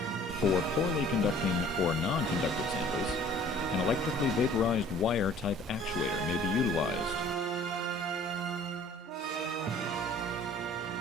For poorly conducting or non-conductive samples, an electrically vaporized wire type actuator may be utilized.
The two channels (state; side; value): normal; both; correlation 0.51